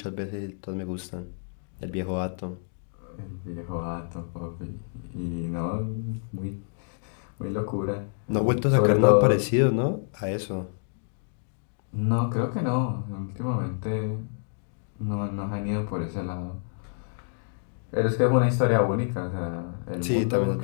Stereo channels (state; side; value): silent; right; digital silence